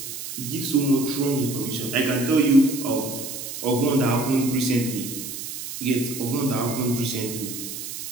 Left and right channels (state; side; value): noise; right; hiss, 8 dB below the sound